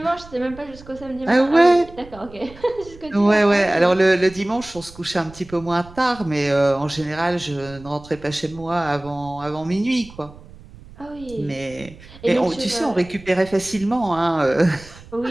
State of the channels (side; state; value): right; noise; rumble, 20 dB below the sound